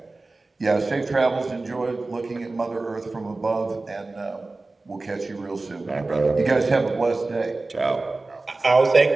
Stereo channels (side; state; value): left; quieter; 3.3 dB